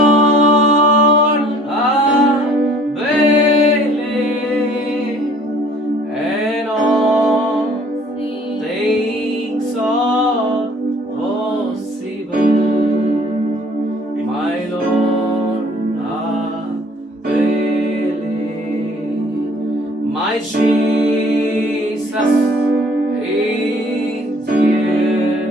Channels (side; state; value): both; normal; correlation 0.55